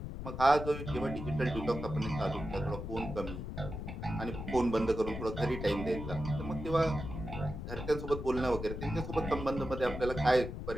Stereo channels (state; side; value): noise; left; rumble, 7 dB below the sound